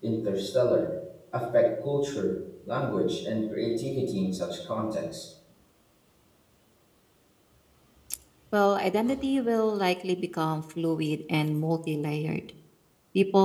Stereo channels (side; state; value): both; identical; correlation 1.00